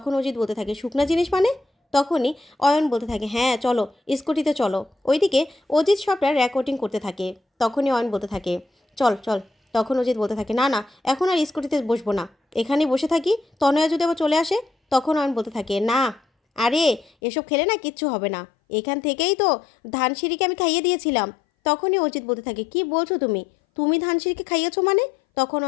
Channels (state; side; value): drops out; right; at 17.1 s